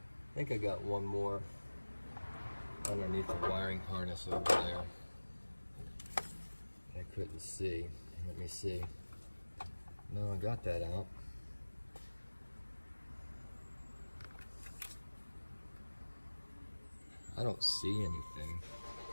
think I got one more underneath the wiring harness over there. I couldn't see. Let me see. No, I got that out. I don't see anything.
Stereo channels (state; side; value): inverted; both; correlation -1.00